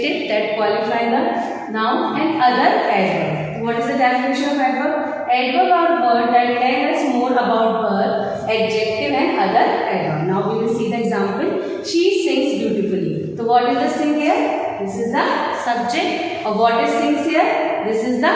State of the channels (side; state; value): both; identical; correlation 1.00